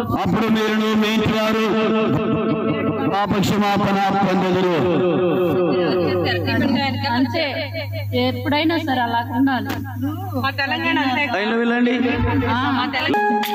అప్పుడు మీరును మీ ఇంటి వారు పాపక్షమాపణ పొందెదరు. అంతే, ఎప్పుడైనా సరే అలా ఉండాలి. మా తెలంగాణ వెళ్ళండి.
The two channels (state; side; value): identical; both; correlation 1.00